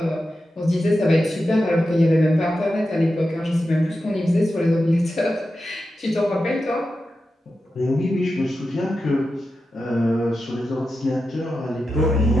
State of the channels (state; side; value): normal; both; correlation 0.90